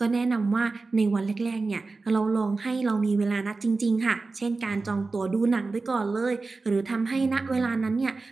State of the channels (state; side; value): quieter; left; 3.8 dB